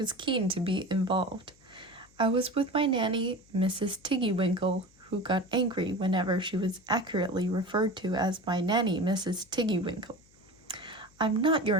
keen to be involved. I was with my nanny, Mrs. Tiggywinkle, who got angry whenever she was accurately referred to as my nanny, Mrs. Tiggywinkle. "I'm not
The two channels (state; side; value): noise; left; hum, 30 dB below the sound